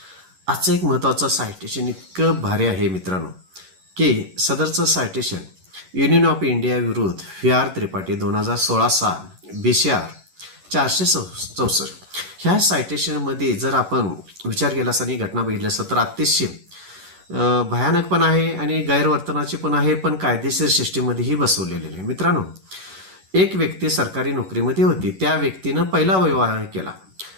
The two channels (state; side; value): late; left; 11 ms